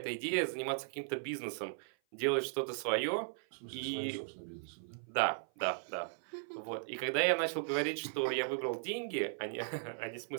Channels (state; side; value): silent; left; 53 dB below the other